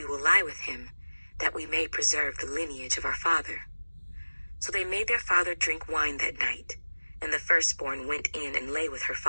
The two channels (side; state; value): both; inverted; correlation -1.00